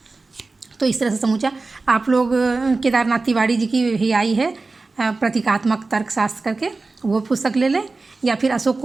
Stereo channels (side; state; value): left; quieter; 3.7 dB